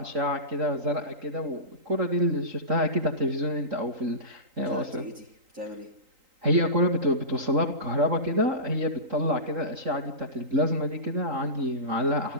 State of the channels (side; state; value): left; late; 3.8 ms